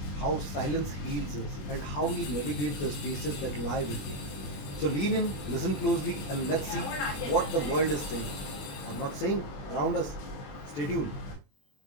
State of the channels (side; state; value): right; late; 21 ms